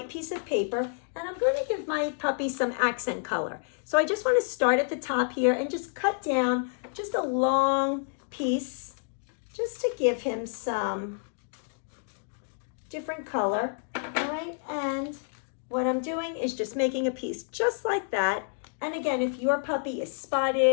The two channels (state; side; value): silent; right; 59 dB below the other